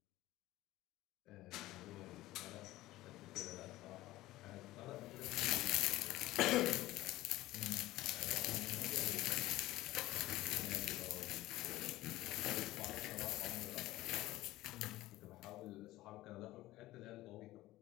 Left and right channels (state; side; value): quieter; right; 16.9 dB